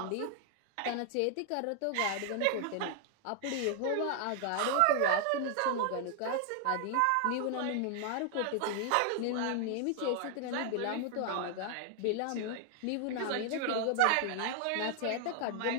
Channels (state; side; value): different; both; correlation 0.00